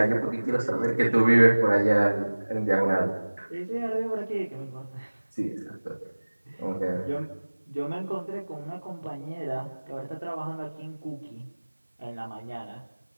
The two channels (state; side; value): inverted; both; correlation -1.00